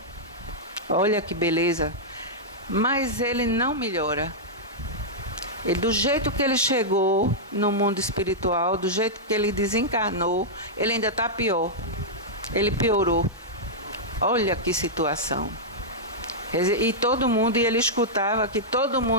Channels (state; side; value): normal; both; correlation -0.09